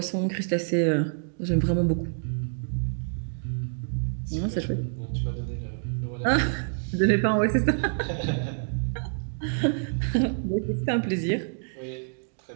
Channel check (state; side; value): silent; left; digital silence